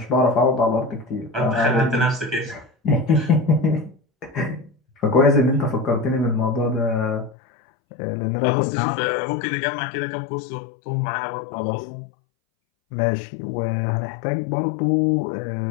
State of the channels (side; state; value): right; drops out; at 7.4 s